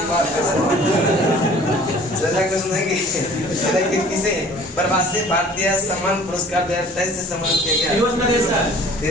कि किसे प्रवासी भारतीय सम्मान पुरस्कार 2023 से सम्मानित किया गया?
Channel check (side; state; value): both; normal; correlation 0.50